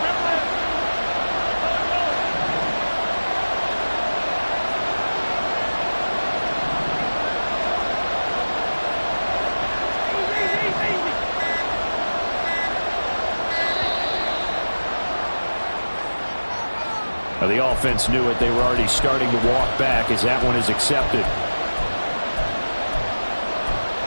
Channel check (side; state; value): both; inverted; correlation -1.00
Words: Now, the offense knew it. They were already starting to walk back as that one is accepted.